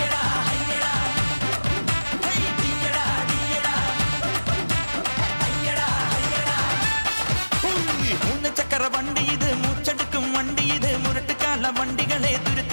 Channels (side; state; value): both; inverted; correlation -1.00